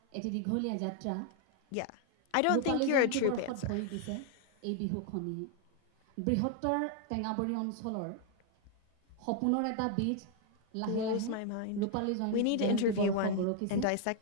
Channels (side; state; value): both; different; correlation 0.00